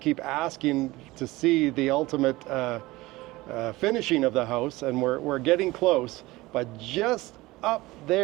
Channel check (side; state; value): left; quieter; 19.9 dB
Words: asking to see the ultimate finishing of the house, and we're getting close. But just up